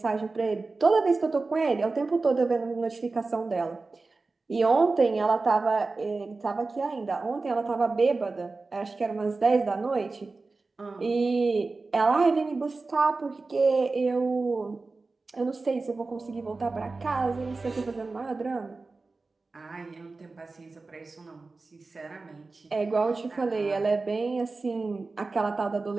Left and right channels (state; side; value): quieter; left; 3.7 dB